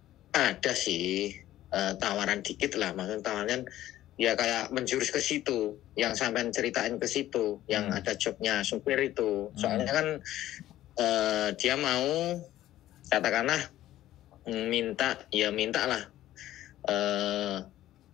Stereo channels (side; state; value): right; quieter; 13.8 dB